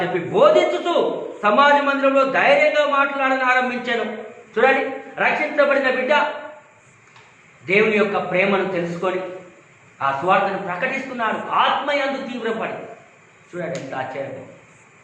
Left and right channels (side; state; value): both; identical; correlation 1.00